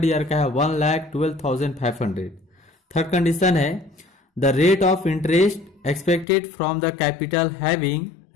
ईयर का है 1,12,500। थर्ड कंडीशन है the rate of interest expected from the capital having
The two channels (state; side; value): drops out; right; at 6.2 s